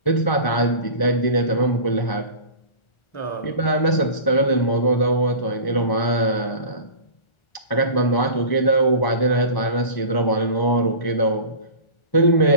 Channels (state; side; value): late; right; 1.4 ms